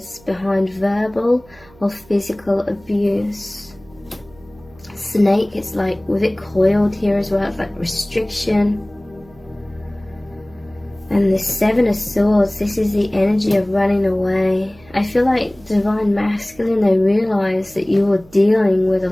behind verbal or physical abuse. Snake, it's like with it coiled here as well, it's like restriction. And the Seven of Swords, this is the energy of running away. I feel like Divine Masculine, they realise that you were dealing with a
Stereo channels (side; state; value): right; noise; hum, 26 dB below the sound